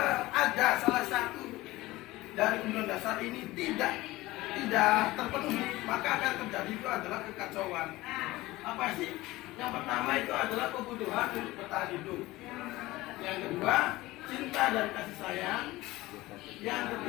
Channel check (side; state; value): right; quieter; 18.9 dB